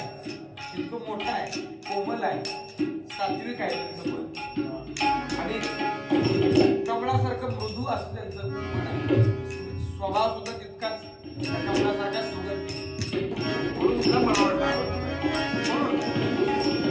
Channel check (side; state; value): both; identical; correlation 1.00